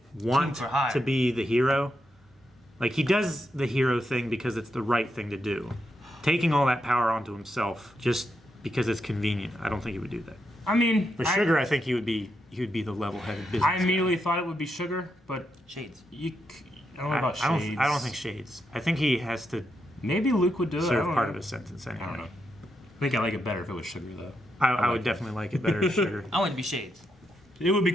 to be the hero. He does the hero thing because it's the right thing to do. Taking all that power onto himself just because it's convenient, I don't think he would do that. I mean, for Sugar, I think he would be the level-headed business. I immediately thought it would be Sugar, but Shades. I don't know about Shades. I don't think Shades. I think he has to. Maybe Luke would do it. Serve part of his sentence anyway. I don't know. I think I like it better if it was Sugar though. I would definitely like it better as Sugar. I want it to be Shades. It would be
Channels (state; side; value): normal; both; correlation 0.83